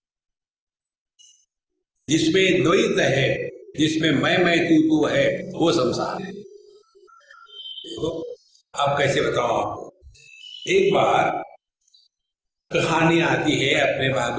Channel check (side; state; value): both; identical; correlation 1.00